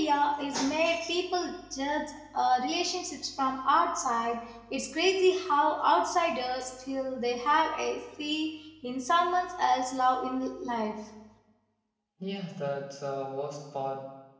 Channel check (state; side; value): identical; both; correlation 1.00